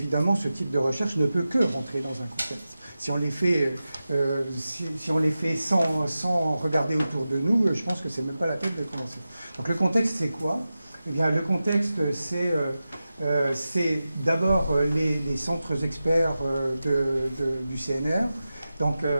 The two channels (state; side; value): inverted; both; correlation -0.93